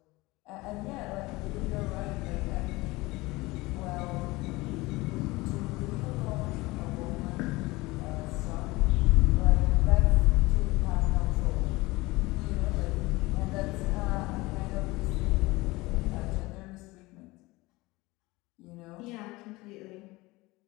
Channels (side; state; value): right; quieter; 21.6 dB